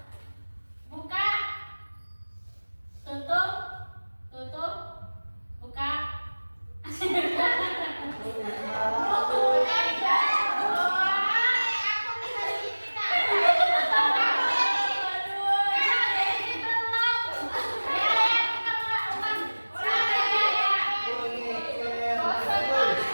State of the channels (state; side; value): inverted; both; correlation -1.00